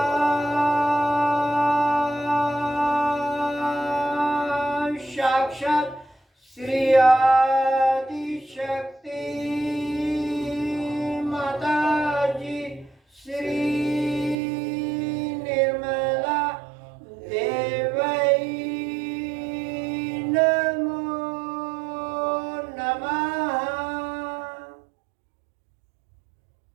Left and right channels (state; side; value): drops out; left; at 14.4 s